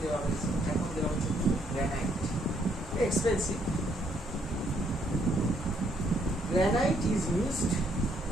দেওয়া হয়েছে, এখন দেওয়া হচ্ছে granite. Expensive. Granite is used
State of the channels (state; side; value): normal; both; correlation 0.71